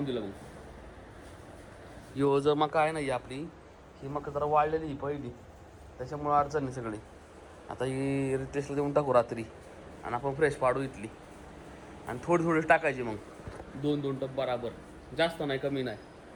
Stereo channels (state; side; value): identical; both; correlation 1.00